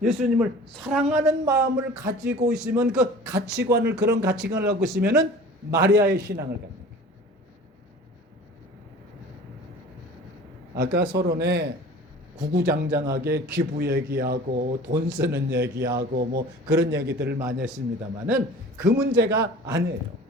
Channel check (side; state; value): both; normal; correlation 0.43